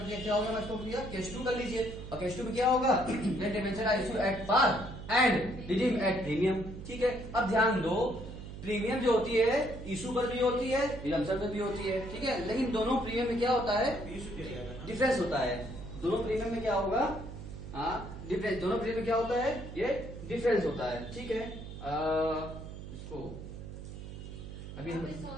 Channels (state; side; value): noise; right; hum, 11 dB below the sound